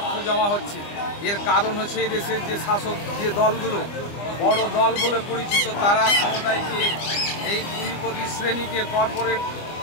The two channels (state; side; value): late; right; 25 ms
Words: জমা হচ্ছে। এর কারণ হচ্ছে এই দেশের যে শাসক যে দলগুলো বড় দল বলে পরিচিত, তারা ক্ষমতায় গিয়ে এই পুঁজিপতি শ্রেণীকে কর্পোরেট